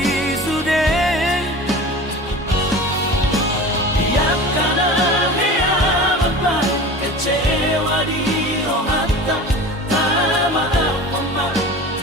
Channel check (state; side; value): normal; both; correlation 0.36